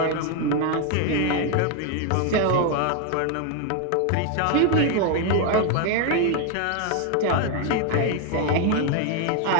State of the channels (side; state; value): both; different; correlation 0.01